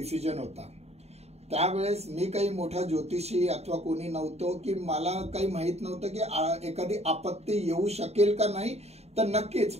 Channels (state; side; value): late; left; 0.31 ms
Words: होता. त्यावेळेस मी काही मोठा ज्योतिषी अथवा कोणी नव्हतो की मला काही माहित नव्हतं की एखादी आपत्ती येऊ शकेल का नाही. तर